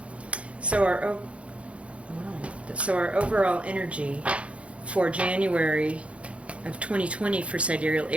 So our overall energy for January of 2020 for Sidereal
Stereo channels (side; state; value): left; late; 0.062 ms